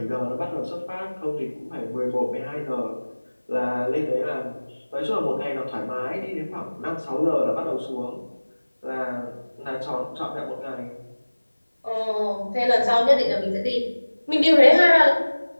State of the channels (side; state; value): both; inverted; correlation -1.00